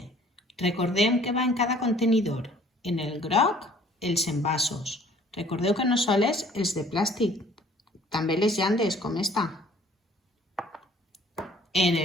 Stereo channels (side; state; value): both; normal; correlation 0.56